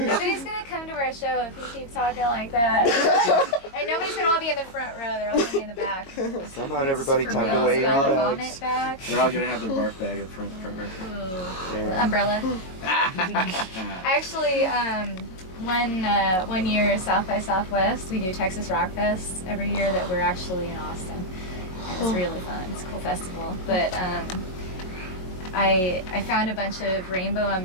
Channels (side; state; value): right; late; 22 ms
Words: gonna come to our show if you keep talking like that. And nobody's gonna all be in the front row. They're all gonna be in the back. Somehow everybody For tucked real, away in about their vomit bags. bag. They're all gonna have their barf bag in front row. Ooh. Umbrella. Actually, one year South by Southwest, we do Texas Rock Fest every year that we're actually in Austin. And it's really fun. It's a cool festival. But I found a bunch of rainbow